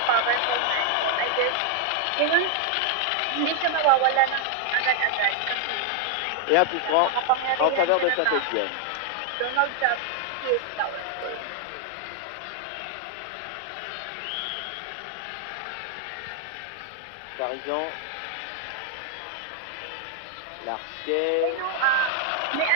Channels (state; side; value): different; both; correlation 0.00